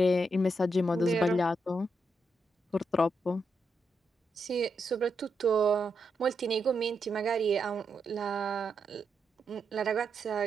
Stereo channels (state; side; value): normal; both; correlation 0.82